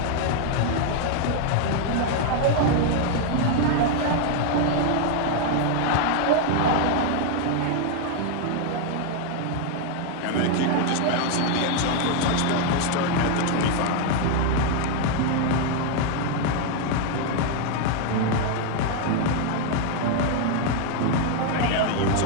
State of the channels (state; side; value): different; both; correlation 0.00